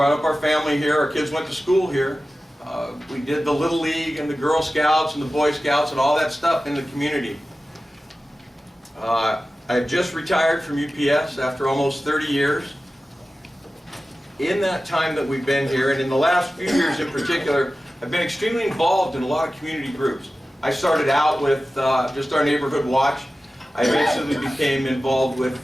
up our family here. Our kids went to school here. We did the Little League and the Girl Scouts and the Boy Scouts and all that stuff in the community. I just retired from UPS after almost 30 years. In that time that we've been here, and in the last few years in particular, I've been extremely involved in a lot of community groups. I started out with just our neighborhood watch. I eventually became involved with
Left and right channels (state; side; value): normal; both; correlation 0.95